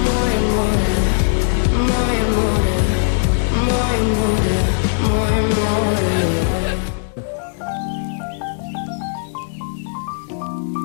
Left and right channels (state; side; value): silent; right; digital silence